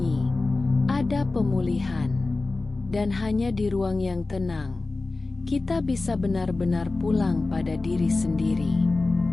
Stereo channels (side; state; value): right; quieter; 3.4 dB